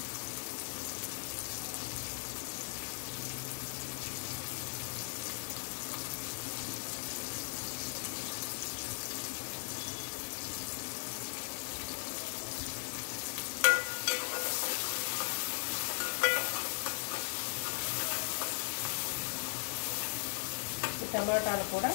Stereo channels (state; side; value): silent; right; digital silence